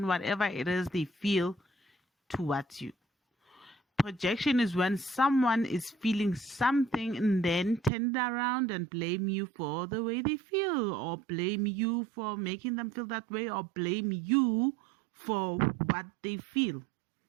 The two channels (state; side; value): drops out; left; at 7.9 s